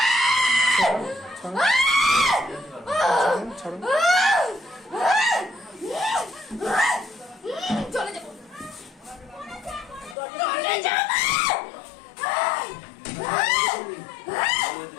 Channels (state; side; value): drops out; right; at 10.2 s